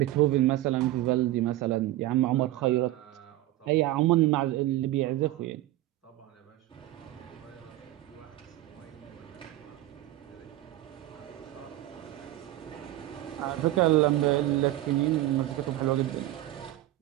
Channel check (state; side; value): quieter; left; 15.4 dB